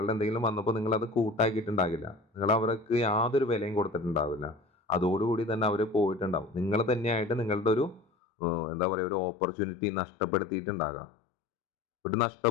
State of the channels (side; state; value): right; drops out; at 8.1 s